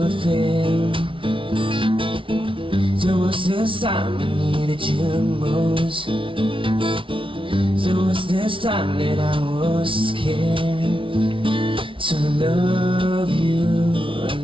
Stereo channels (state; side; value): late; left; 0.25 ms